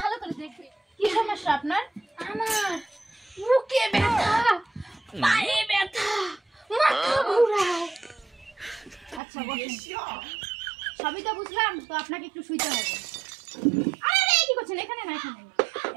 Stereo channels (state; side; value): drops out; left; at 9.2 s